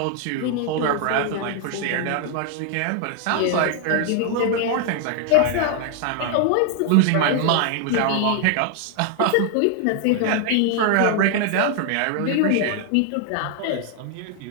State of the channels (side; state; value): both; different; correlation 0.00